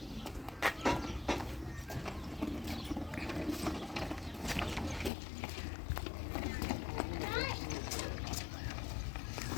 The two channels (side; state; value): right; drops out; at 5.1 s